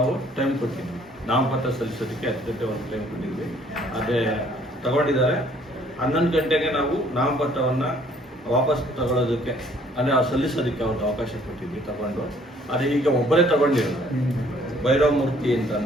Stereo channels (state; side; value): normal; both; correlation 0.60